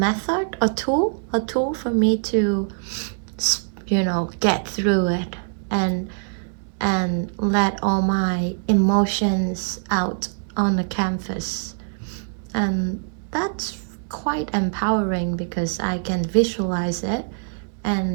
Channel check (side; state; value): left; silent; 61 dB below the other